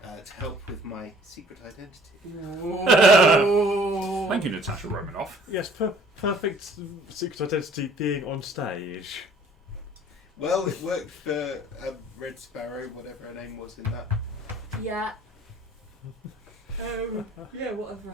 to help with my secret identity. Thank you, Natasha Romanoff. Yes, perfect secret identity being on stage. Well, it worked for Red Sparrow, whatever her name was in that. Yeah. Yeah,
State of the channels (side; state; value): both; normal; correlation 0.54